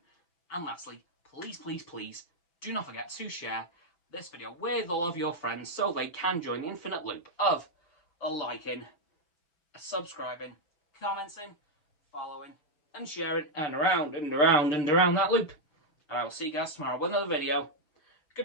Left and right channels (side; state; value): right; late; 6.7 ms